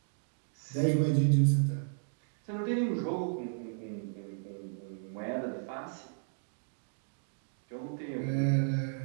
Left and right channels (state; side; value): silent; left; digital silence